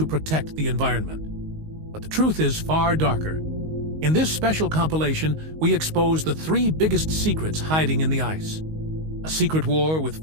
protect the environment. But the truth is far darker. In this special compilation, we expose the 3 biggest secrets hiding in the ice. A secret war with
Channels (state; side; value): late; left; 19 ms